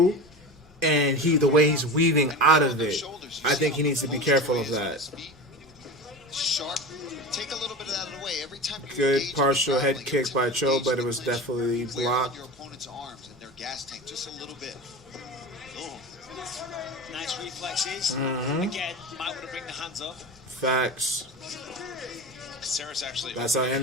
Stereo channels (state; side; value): normal; both; correlation 0.28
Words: and the way he's weaving out of it. I think he needs to be careful of that. Sharp. Take a little bit of that away every time. Good partial head kick by Cho, but it was definitely blocked. Your opponent's arms and their gas tank just a little bit. Nice reflexes. Again, might want to bring the hands up. Facts. Actually that's how